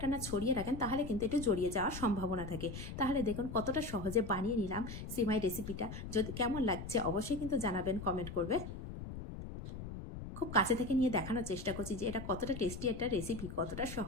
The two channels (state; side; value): noise; left; rumble, 9 dB below the sound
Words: না ছড়িয়ে রাখেন, তাহলে কিন্তু একটু জড়িয়ে যাওয়ার সম্ভাবনা থাকে। তাহলে দেখুন কতটা সহজে বানিয়ে নিলাম সিমাই রেসিপিটা। যদি কেমন লাগছে অবশ্যই কিন্তু জানাবেন, কমেন্ট করবে। খুব কাছে থেকে নিয়ে দেখানোর চেষ্টা করছি যে এটা কতটা টেস্টি একটা রেসিপি, কতটা